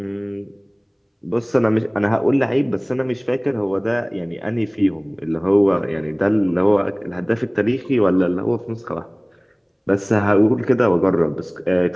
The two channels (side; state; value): both; identical; correlation 1.00